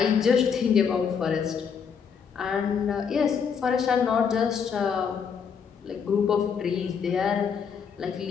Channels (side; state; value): right; quieter; 6.7 dB